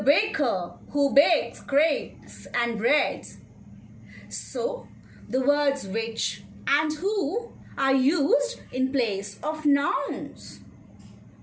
baker who bakes cakes and bread. So, the words which and who are used in place of nouns.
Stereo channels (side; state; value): both; identical; correlation 1.00